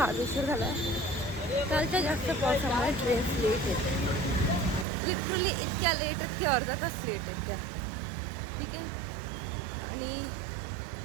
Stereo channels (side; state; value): left; drops out; at 4.9 s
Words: उशीर झाला आहे. कालच्या जास्त पावसामुळे ट्रेन्स लेट येते, लिटरली इतक्या लेट आहेत की अर्धा तास लेट आहेत त्या. ठीक आहे. आणि